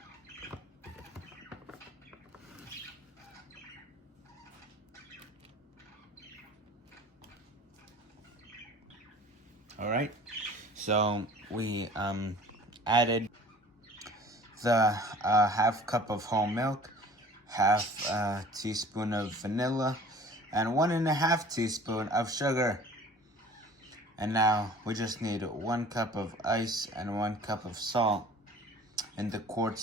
Alright, so we added the half cup of whole milk, half a teaspoon of vanilla, and 1 1/2 teaspoon of sugar. And now we just need 1 cup of ice and 1 cup of salt in the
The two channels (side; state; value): both; normal; correlation 0.46